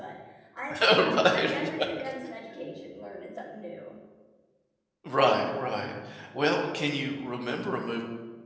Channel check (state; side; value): identical; both; correlation 1.00